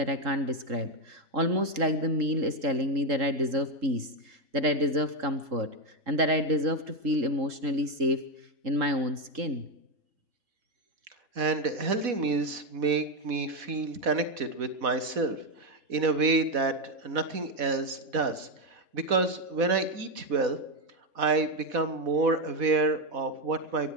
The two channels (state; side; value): late; left; 4.1 ms